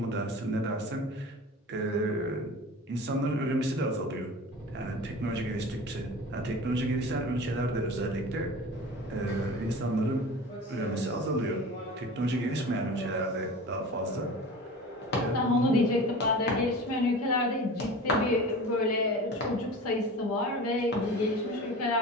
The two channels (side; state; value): both; normal; correlation 0.36